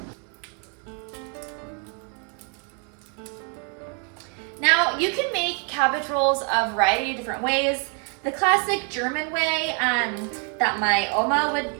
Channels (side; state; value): left; quieter; 39.6 dB